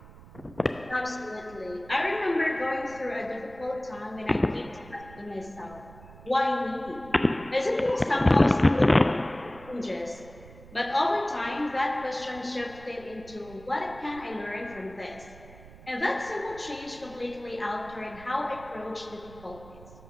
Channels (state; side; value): noise; right; rumble, 20 dB below the sound